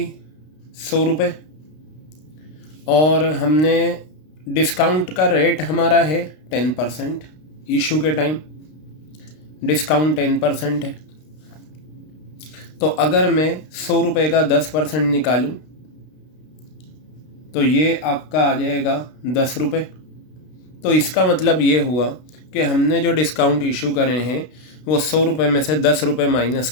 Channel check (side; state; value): right; late; 32 ms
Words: 100 रुपये और हमने डिस्काउंट का रेट हमारा है 10%. इशू के टाइम डिस्काउंट 10% है. तो अगर मैं 100 रुपये का 10% निकालूं तो ये आपका आ जाएगा 10 रुपये. तो इसका मतलब ये हुआ कि हमने जो डिस्काउंट इशू करे हैं वो 100 रुपये में से 10 रुपये माइनस